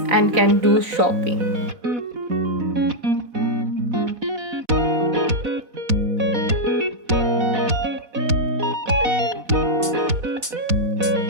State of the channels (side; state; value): left; late; 4.1 ms